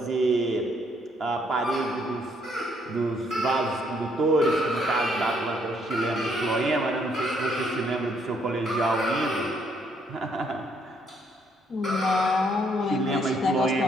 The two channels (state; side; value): normal; both; correlation 0.69